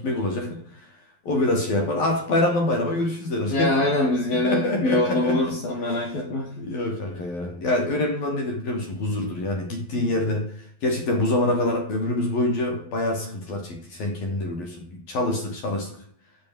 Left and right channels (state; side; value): late; right; 12 ms